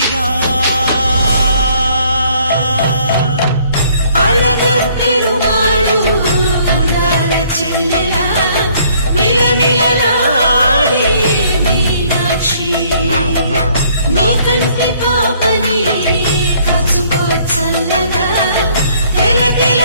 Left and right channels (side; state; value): both; inverted; correlation -0.62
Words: అళగర్ పెరుమాళు అందాల చెల్లెలా, నిలనిలలాడే మీనాక్షి, నాకంటే పాపని కాచుకో చల్లగా, తెల